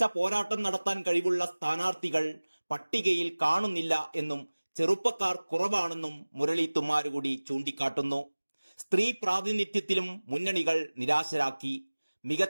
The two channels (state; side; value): inverted; both; correlation -1.00